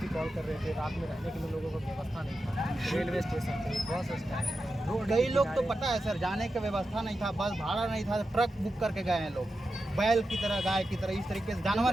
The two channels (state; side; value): normal; both; correlation 0.90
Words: कॉल कर रहे थे, रात में रहने के लिए लोगों को व्यवस्था नहीं था, रेलवे स्टेशन पे, बस स्टैंड, रोड कई के लोग तो किनारे। पता है सर, जाने की व्यवस्था नहीं था, बस भाड़ा नहीं था, ट्रक बुक करके गए हैं लोग, बैल की तरह, गाय की तरह, इस तरीके से